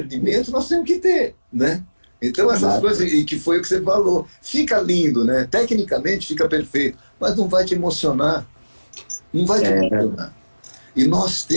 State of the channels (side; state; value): both; inverted; correlation -1.00